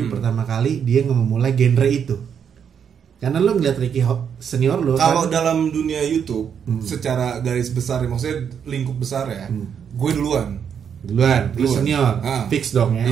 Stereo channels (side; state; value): left; quieter; 7.7 dB